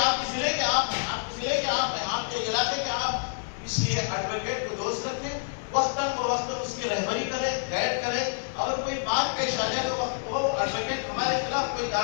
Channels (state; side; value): silent; right; 60 dB below the other